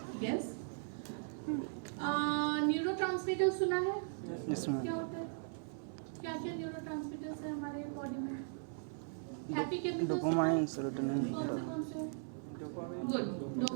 यस, न्यूरोट्रांसमीटर सुना है? इसमें क्या होता है? क्या क्या न्यूरोट्रांसमीटर्स है हमारे बॉडी में? हैप्पी केमिकल्स डोपामाइन, सेरोटोनिन, कौन से? Good,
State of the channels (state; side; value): silent; left; digital silence